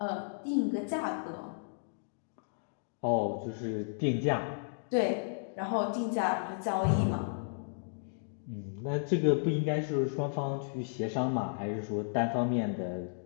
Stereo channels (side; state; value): right; silent; digital silence